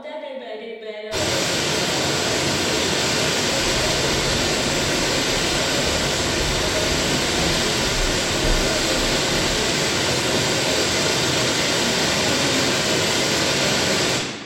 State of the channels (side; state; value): both; identical; correlation 1.00